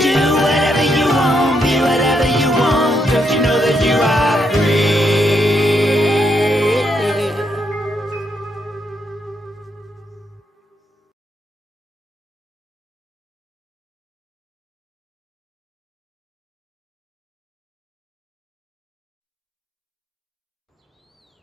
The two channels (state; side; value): normal; both; correlation 0.77